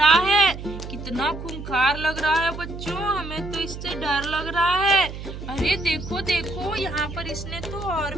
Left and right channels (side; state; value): right; noise; hum, 10 dB below the sound